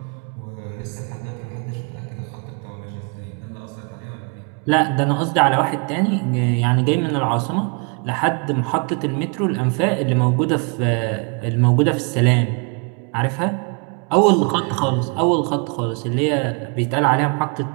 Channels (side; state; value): left; quieter; 36.2 dB